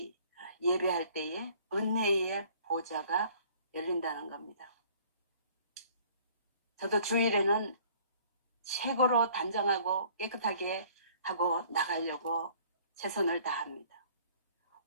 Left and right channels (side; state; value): both; inverted; correlation -0.55